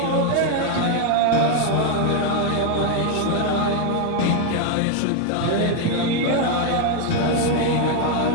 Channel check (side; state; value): both; different; correlation 0.01